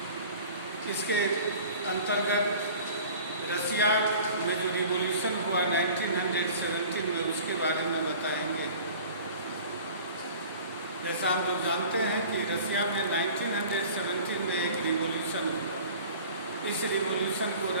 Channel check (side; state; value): both; inverted; correlation -0.44